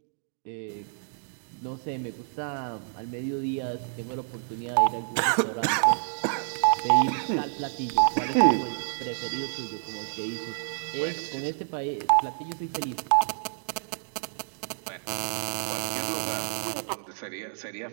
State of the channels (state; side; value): silent; left; digital silence